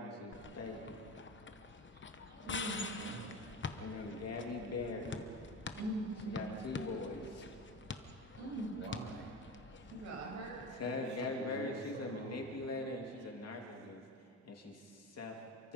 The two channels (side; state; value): both; normal; correlation 0.27